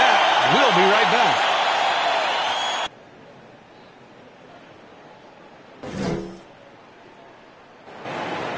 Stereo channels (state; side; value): identical; both; correlation 1.00